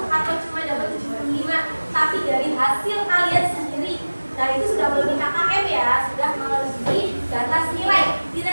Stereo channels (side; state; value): both; inverted; correlation -1.00